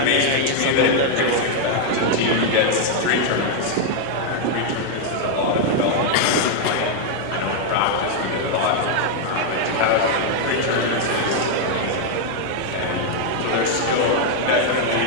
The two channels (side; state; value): both; different; correlation 0.00